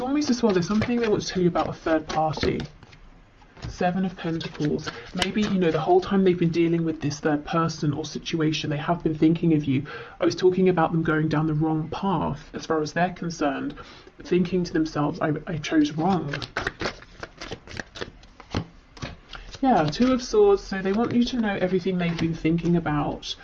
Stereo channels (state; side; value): identical; both; correlation 1.00